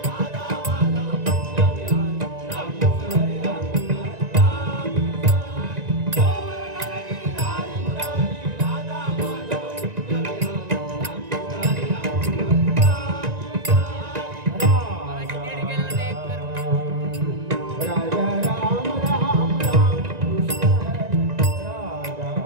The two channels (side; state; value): left; late; 1.9 ms